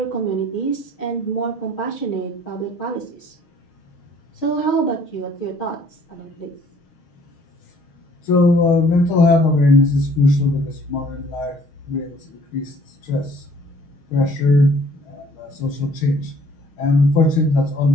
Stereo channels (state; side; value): late; right; 6.4 ms